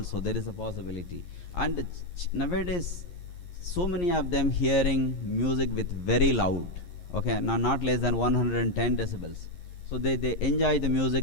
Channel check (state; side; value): late; right; 11 ms